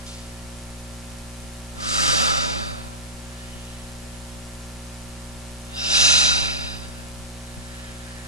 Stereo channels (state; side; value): normal; both; correlation -0.19